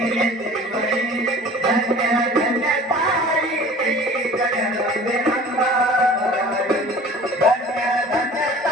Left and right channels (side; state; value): both; normal; correlation 0.45